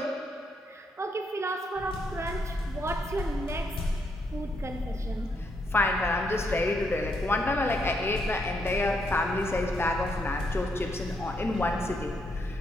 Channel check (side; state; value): both; normal; correlation 0.76